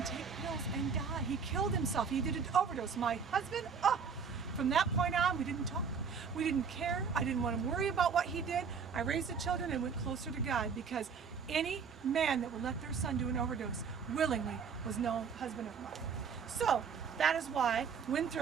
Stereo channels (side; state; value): left; quieter; 6.1 dB